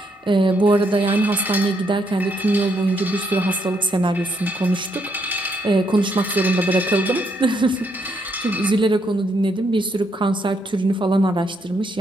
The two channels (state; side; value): normal; both; correlation 0.75